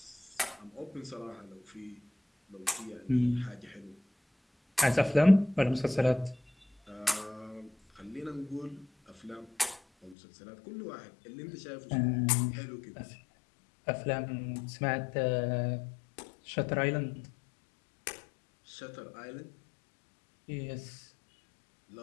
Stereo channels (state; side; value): drops out; right; at 10.2 s